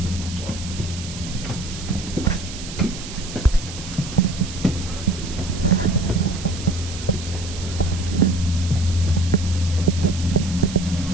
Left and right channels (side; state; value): right; noise; hiss, 12 dB below the sound